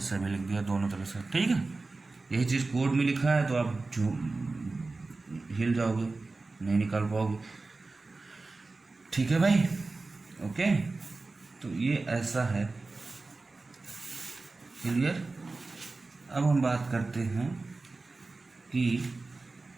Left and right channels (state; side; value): quieter; left; 3.6 dB